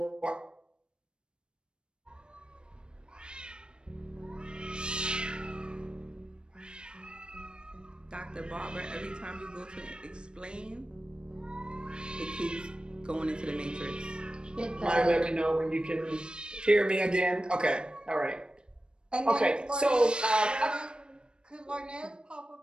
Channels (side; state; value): left; late; 0.052 ms